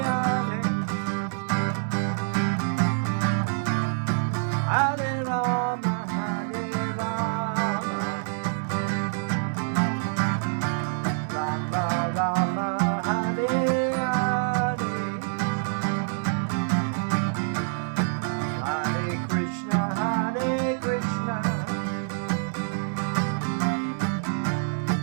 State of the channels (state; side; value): silent; left; digital silence